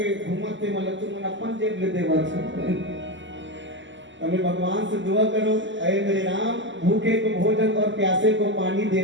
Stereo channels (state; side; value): late; left; 0.54 ms